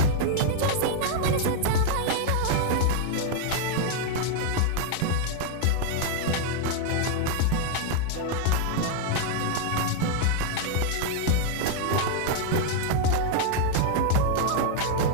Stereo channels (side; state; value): both; different; correlation 0.00